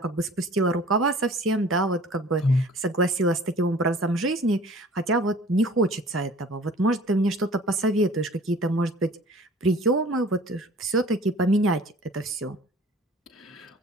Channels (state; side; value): normal; both; correlation 0.47